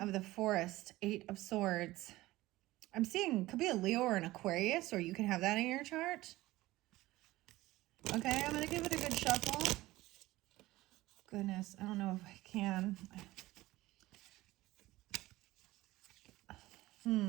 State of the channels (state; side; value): quieter; left; 17.9 dB